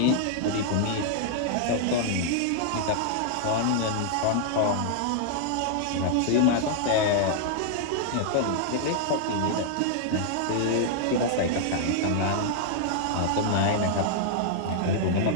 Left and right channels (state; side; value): different; both; correlation -0.01